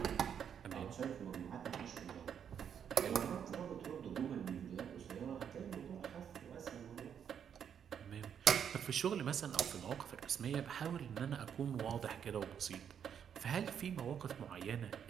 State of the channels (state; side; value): quieter; left; 8.3 dB